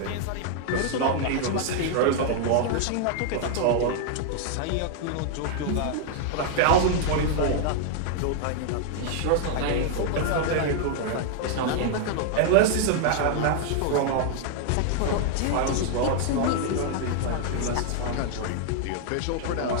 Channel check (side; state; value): both; different; correlation 0.00